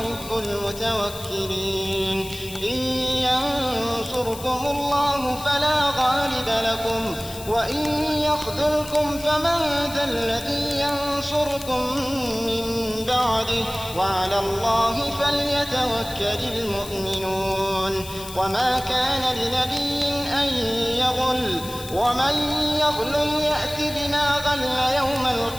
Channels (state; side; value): noise; left; hiss, 14 dB below the sound